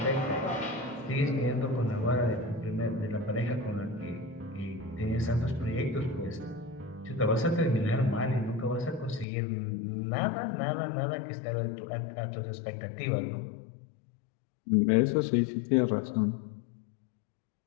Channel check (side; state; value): right; drops out; at 9.2 s